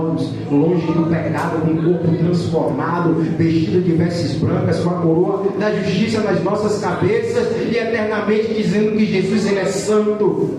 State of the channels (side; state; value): both; identical; correlation 1.00